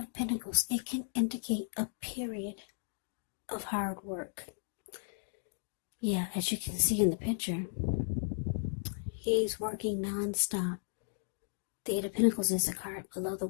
Pentacles, it can indicate a period of hard work. Yeah, as you can see in the picture, he's working non-stop. The 8 of Pentacles is a card below the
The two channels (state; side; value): silent; right; digital silence